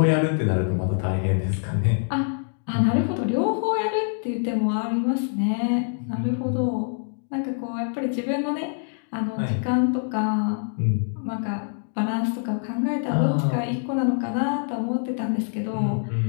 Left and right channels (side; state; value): right; silent; digital silence